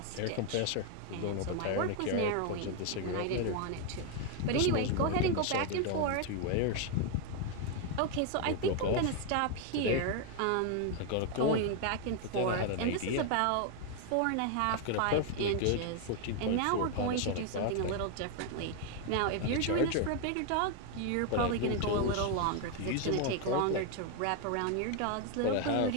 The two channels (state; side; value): different; both; correlation 0.01